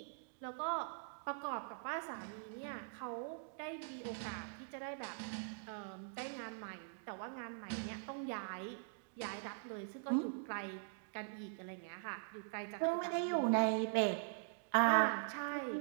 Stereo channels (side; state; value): left; silent; digital silence